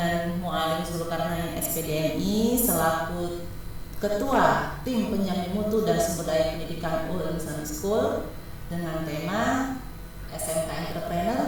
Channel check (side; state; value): both; identical; correlation 1.00